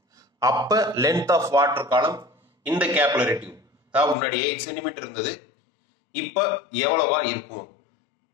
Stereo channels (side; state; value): right; drops out; at 4.2 s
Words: அப்போ லென்த் ஆஃப் வாட்டர் காலம் இந்த கேபிலரி டியூப், அதாவது முன்னாடி 8 சென்டிமீட்டர் இருந்தது, இப்போ எவ்வளவா இருக்கும்